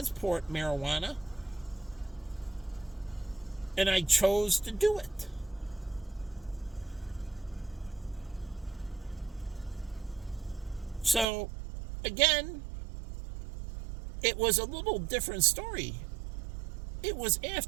marijuana, and I chose to do it. So, again, it was a little different story. It was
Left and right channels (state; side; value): drops out; left; at 11.2 s